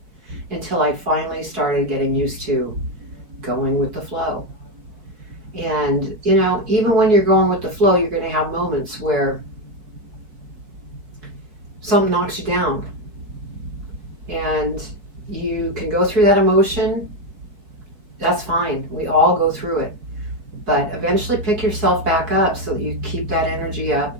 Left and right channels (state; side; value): late; left; 4.4 ms